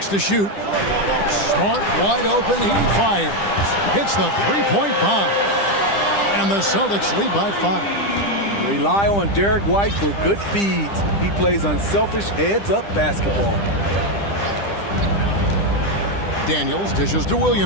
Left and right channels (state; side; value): late; right; 10 ms